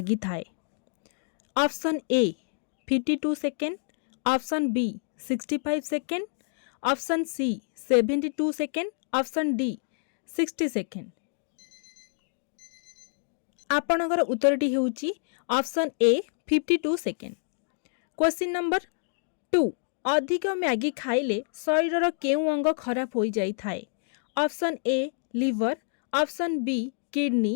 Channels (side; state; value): right; silent; digital silence